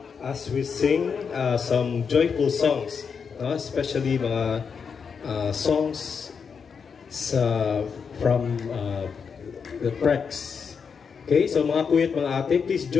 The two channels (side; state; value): right; quieter; 6.1 dB